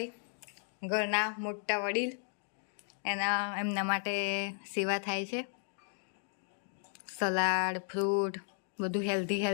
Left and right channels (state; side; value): silent; right; 55 dB below the other